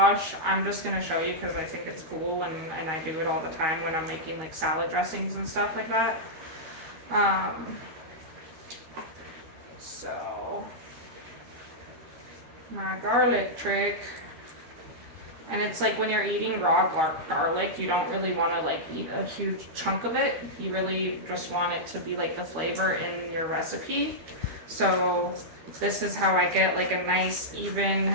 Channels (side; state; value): left; late; 13 ms